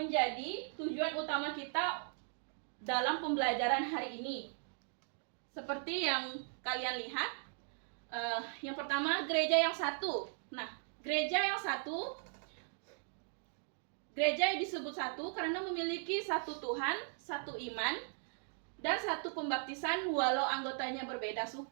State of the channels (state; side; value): silent; left; 52 dB below the other